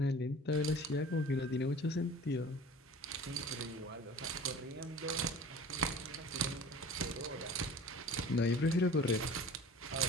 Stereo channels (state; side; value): normal; both; correlation 0.42